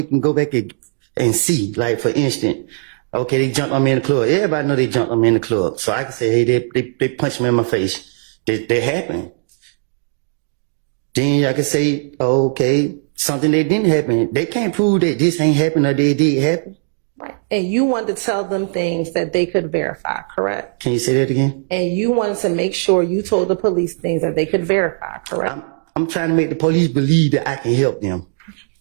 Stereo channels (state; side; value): silent; left; digital silence